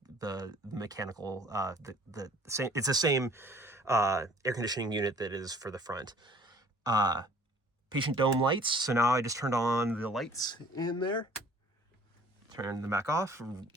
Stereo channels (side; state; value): both; normal; correlation 0.53